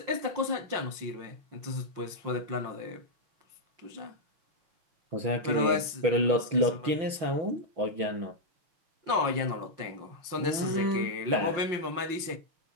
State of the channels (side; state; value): left; late; 5.7 ms